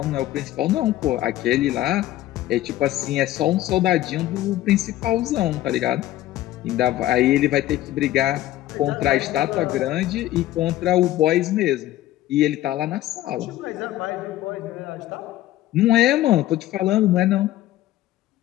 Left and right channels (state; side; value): quieter; right; 14.6 dB